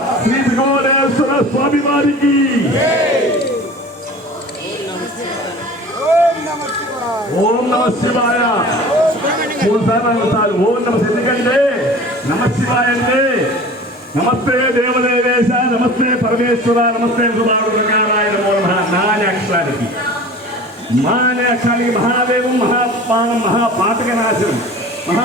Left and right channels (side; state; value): both; normal; correlation 0.41